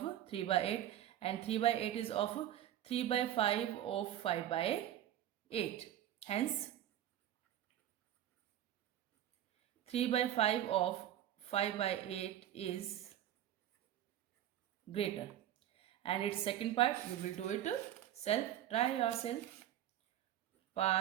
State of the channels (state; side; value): quieter; left; 11.7 dB